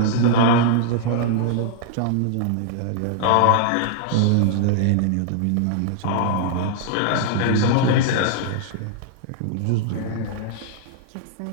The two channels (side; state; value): both; different; correlation -0.01